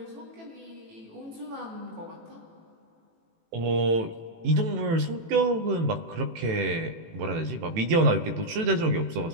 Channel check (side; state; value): left; late; 18 ms